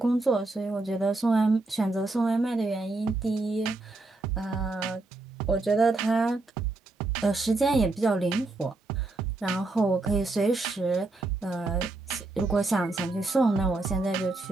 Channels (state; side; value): quieter; left; 3.2 dB